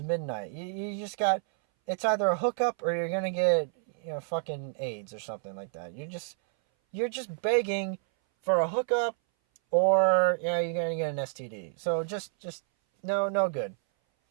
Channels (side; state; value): left; silent; 58 dB below the other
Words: midnight. You just got, it's either a hookup or you're going to get, fucking AIDS or something like that. You're just begging for a hookup or, you're going to get an STD. So just, no good.